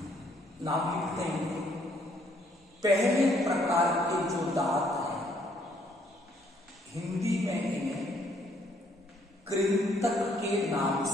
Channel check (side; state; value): both; normal; correlation 0.67